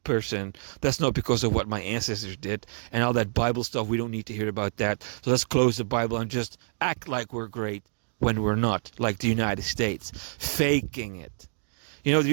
person. That's not because of what my ancestors did and all that Bible stuff. We don't need to hear about that. So let's close the Bible and just act like we're great when we're not, like the United States, faking it. You know, the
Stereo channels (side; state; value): left; silent; digital silence